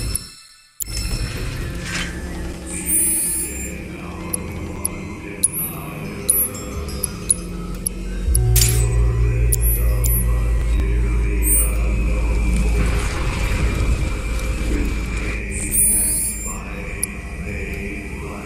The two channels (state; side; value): identical; both; correlation 1.00